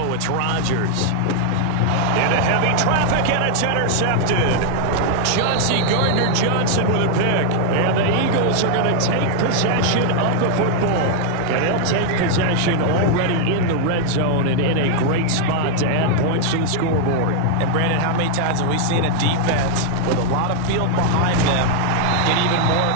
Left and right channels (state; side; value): different; both; correlation 0.00